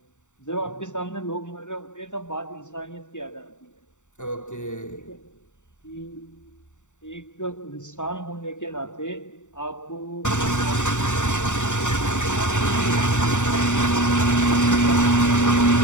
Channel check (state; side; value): late; right; 0.85 ms